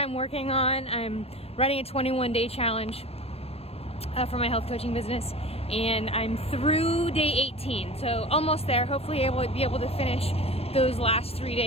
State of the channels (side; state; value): right; late; 0.29 ms